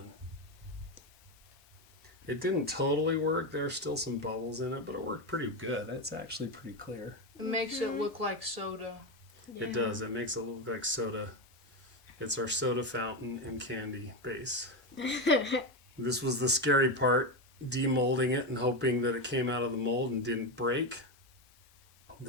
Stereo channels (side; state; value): both; normal; correlation 0.13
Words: It didn't totally work. There's still some bubbles in it, but it worked pretty good. It's actually pretty clear. It makes it look like soda. It does. It makes it look like soda. It's our soda fountain and candy base. This was the scary part, demolding it and hoping that it came out of the mold and didn't break.